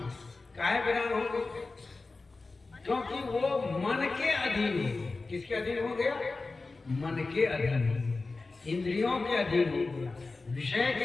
काहे वीरान हो गई? क्योंकि वो मन के अधीन हो। किसके अधीन हो गया? मन के अधीन, इंद्रियों के अधीन हो गया, विषय के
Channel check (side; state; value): right; quieter; 3.7 dB